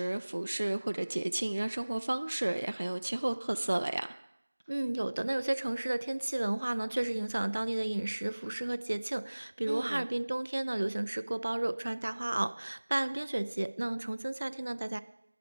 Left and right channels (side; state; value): both; inverted; correlation -1.00